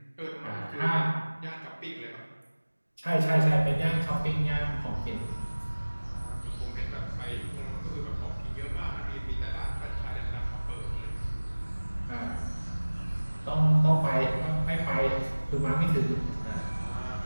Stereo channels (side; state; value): both; inverted; correlation -1.00